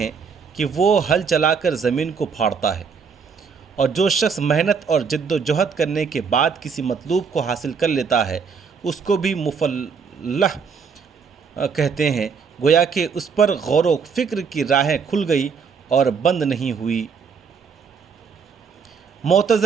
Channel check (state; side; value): quieter; left; 5.9 dB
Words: کہ وہ ہل چلا کر زمین کو پھاڑتا ہے، اور جو شخص محنت اور جد و جہد کرنے کے بعد کسی مطلوب کو حاصل کر لیتا ہے اس کو بھی مفلح کہتے ہیں، گویا کہ اس پر غور و فکر کی راہیں کھل گئی اور بند نہیں ہوئی۔